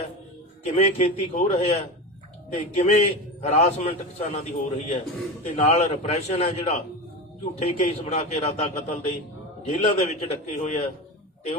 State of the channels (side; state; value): both; normal; correlation 0.24